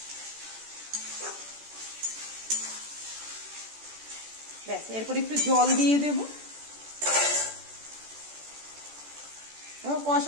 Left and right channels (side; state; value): left; late; 14 ms